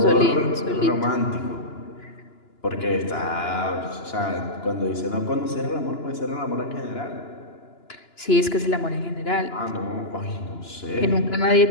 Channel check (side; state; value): right; late; 2.9 ms